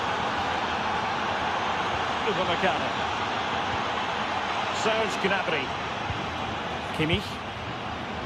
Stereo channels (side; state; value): both; identical; correlation 1.00